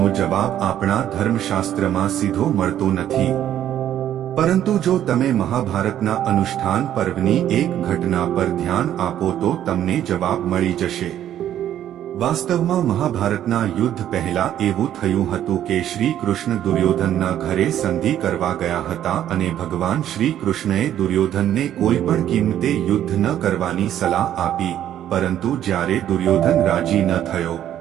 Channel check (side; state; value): left; quieter; 11.2 dB